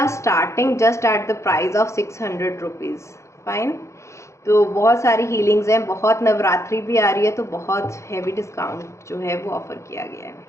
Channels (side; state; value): right; late; 0.14 ms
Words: starting just at the price of 600 rupees. Fine, तो बहुत सारी हीलिंग्स हैं, बहुत नवरात्रि भी आ रही है, तो बहुत हैवी डिस्काउंट जो है वो ऑफ़र किया गया है।